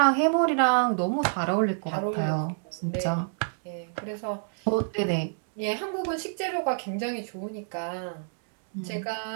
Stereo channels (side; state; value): left; silent; digital silence